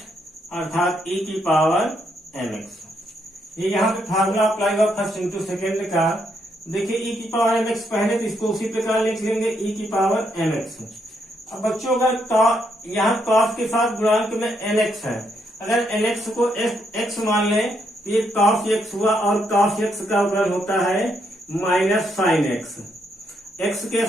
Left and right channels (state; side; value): normal; both; correlation 0.76